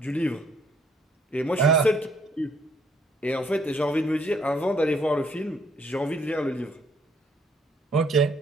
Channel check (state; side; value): normal; both; correlation 0.66